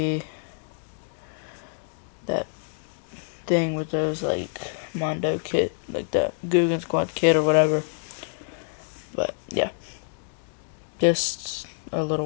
that thing with those, like, Mondo kit, like that Guggen Squad kit or whatever. But yeah, just a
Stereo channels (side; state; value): right; silent; digital silence